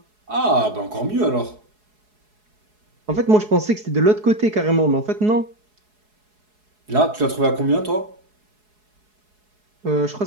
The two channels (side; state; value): left; late; 4.7 ms